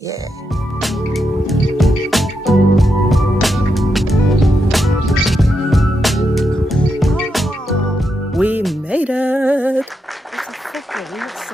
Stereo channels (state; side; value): normal; both; correlation 0.84